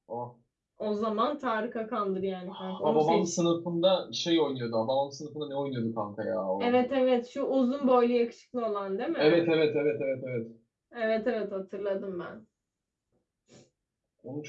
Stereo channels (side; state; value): both; identical; correlation 1.00